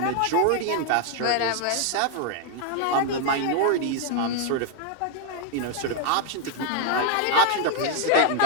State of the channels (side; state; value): both; different; correlation 0.00